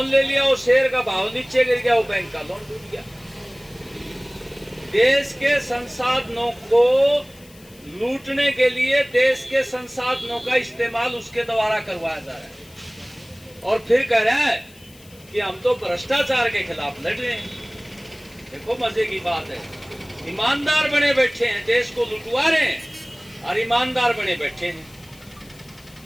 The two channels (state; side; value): noise; left; hiss, 24 dB below the sound